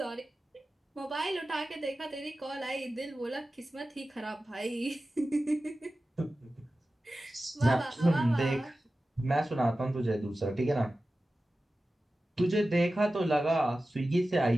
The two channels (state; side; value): normal; both; correlation 0.95